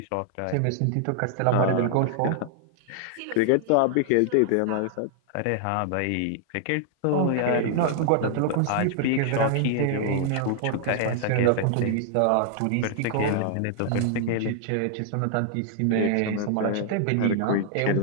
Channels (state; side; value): different; both; correlation 0.00